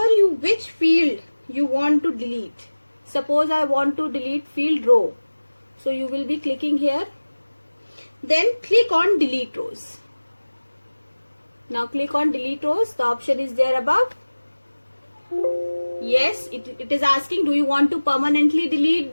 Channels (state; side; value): inverted; both; correlation -1.00